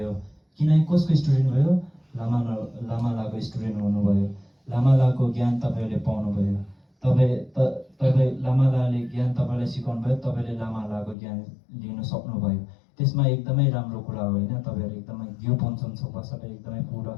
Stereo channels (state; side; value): drops out; right; at 11.2 s